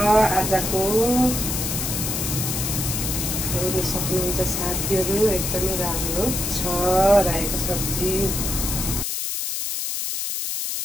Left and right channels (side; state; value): left; noise; hiss, 2 dB below the sound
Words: आजको। हेर्न सक्नुहुन्छ साथीहरू, एकदमै राम्रो छ रायोको सब्जी।